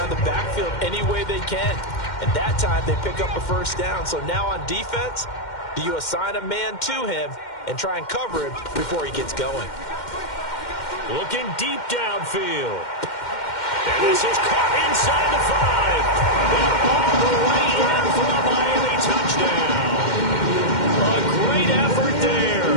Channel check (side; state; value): right; late; 2.1 ms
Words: of the backfield any way they can. And that time they pick up a first down. So now on defense, do you assign a man to him and try and cover him before he gets going? Looking deep downfield. And this is caught inside the 5. And all the way in for a Miami touchdown. A great effort